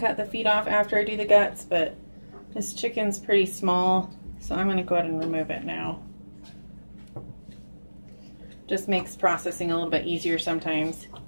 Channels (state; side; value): inverted; both; correlation -1.00